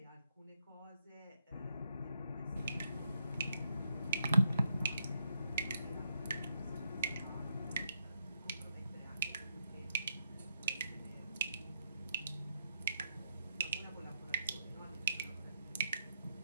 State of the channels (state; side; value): inverted; both; correlation -0.78